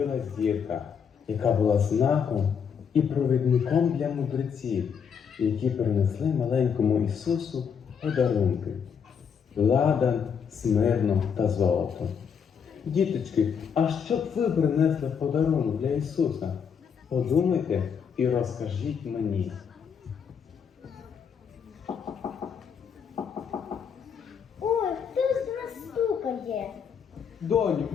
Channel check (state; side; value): quieter; right; 7.0 dB